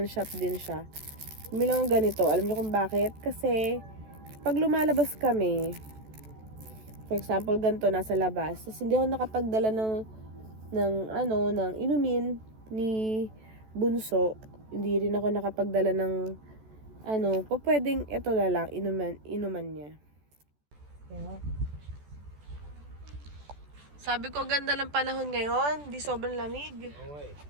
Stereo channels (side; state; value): left; late; 14 ms